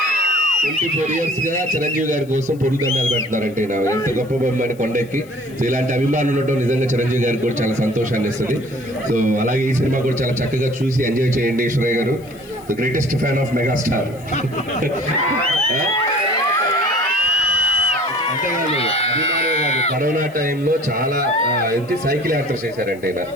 24 years గా చిరంజీవి గారి కోసం పొరుదండాలు పెడుతున్నారంటే ఎంత గొప్ప బొమ్మని కొండెక్కి. సో ఇలాంటి అభిమానులు ఉండటం నిజంగా చిరంజీవి గారికి కూడా చాలా సంతోషాన్ని ఇస్తుంది. సో అలాగే ఈ సినిమా కూడా చాలా చక్కగా చూసి ఎంజాయ్ చేయండి. ఈశ్వరయ్య గారు the greatest fan of megastar. అంతేకాదు, అభిమానులు కాదు, కరోనా టైంలో చాలా ఏంటి సైకిల్ యాత్ర చేశారంటే ఈయన.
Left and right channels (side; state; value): left; noise; hiss, 27 dB below the sound